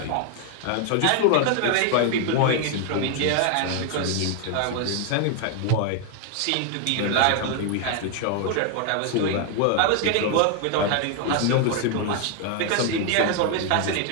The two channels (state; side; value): different; both; correlation 0.01